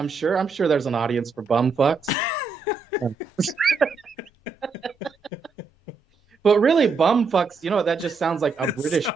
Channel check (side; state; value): left; quieter; 4.6 dB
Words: sure there's an audience for bum fucks. But really, bum fucks. That just sounds like a It British sounds,